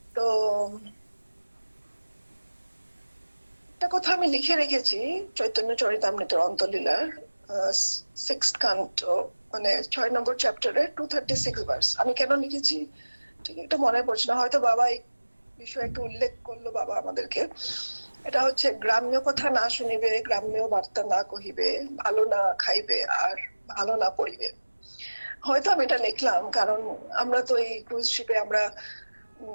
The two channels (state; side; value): inverted; both; correlation -1.00